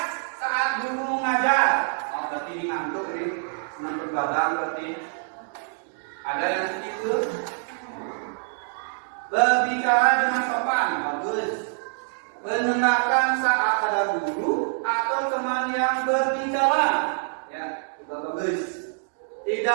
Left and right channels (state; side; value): silent; left; digital silence